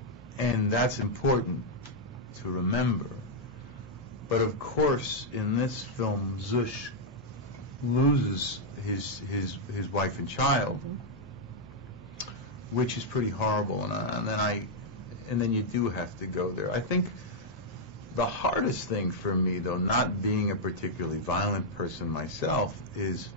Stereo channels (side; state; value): both; normal; correlation -0.03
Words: And that's important to remember. But of course, in this film, Zush loses his wife and child, which is pretty horrible. And then you do have to go there. I think the hardest thing for me, though, not being a particularly violent person myself, is